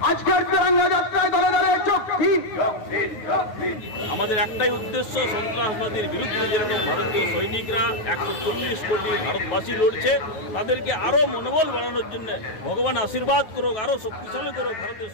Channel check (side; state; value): right; late; 9.4 ms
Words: আজকের তিরঙ্গা যাত্রায় দলে দলে চোখ দিন। আমাদের একটাই উদ্দেশ্য, সন্ত্রাসবাদীর বিরুদ্ধে যেরকম ভারতীয় সৈনিকরা 140 কোটি ভারতবাসী লড়ছে, তাদেরকে আরো মনোবল বাড়ানোর জন্য ভগবান আশীর্বাদ করুক, আরো শক্তিশালী করুক ভারতের